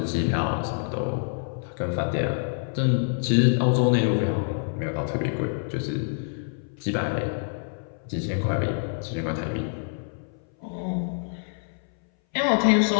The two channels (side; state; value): right; silent; 59 dB below the other